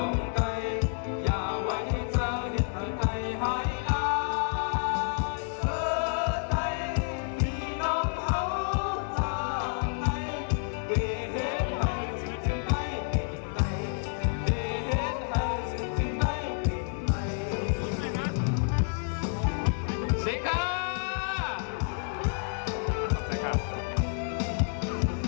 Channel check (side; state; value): right; silent; 58 dB below the other